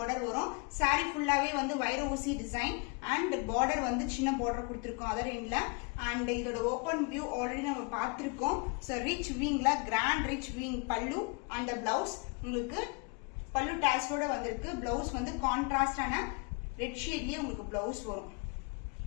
வரும். சாரி ஃபுல்லாவே வந்து வைர ஊசி டிசைன் அண்ட் பார்டர் வந்து சின்ன பார்டர் கொடுத்திருக்கோம் அதர் எண்ட்ல. அண்ட் இதோட ஓபன் வியூ ஆல்ரெடி நம்ம பார்த்திருக்கோம். சோ ரிச் வீங்ல கிராண்ட் ரிச் வீங் பல்லு அண்ட் பிளவுஸ் உங்களுக்கு பல்லு டாஸோட வந்திருக்கு. பிளவுஸ் வந்து கான்ட்ராஸ்டான ரெட் ஷேட்லயே உங்களுக்கு பிளவுஸ் வரும்.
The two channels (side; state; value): right; quieter; 32.3 dB